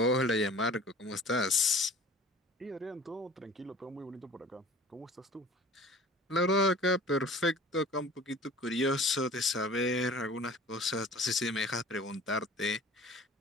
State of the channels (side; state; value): both; normal; correlation 0.45